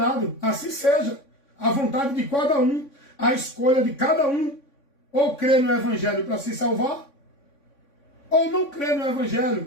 Assim seja. A vontade de cada um, a escolha de cada um. Ou crê no Evangelho para se salvar, ou não crê no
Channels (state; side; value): late; right; 3.6 ms